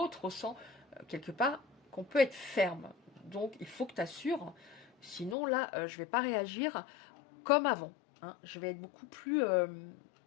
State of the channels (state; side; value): drops out; right; at 5.4 s